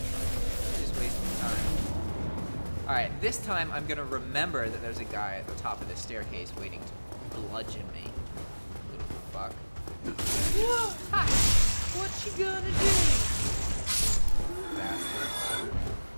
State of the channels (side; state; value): both; inverted; correlation -1.00